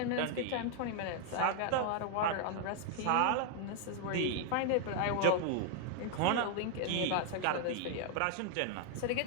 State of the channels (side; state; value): both; different; correlation 0.00